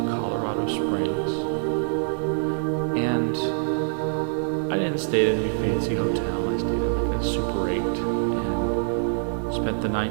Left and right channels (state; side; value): silent; left; 62 dB below the other